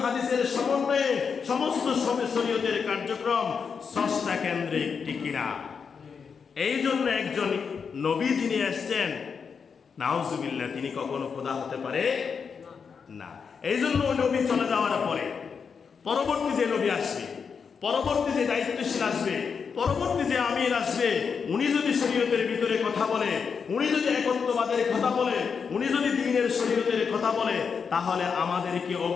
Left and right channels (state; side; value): quieter; right; 6.0 dB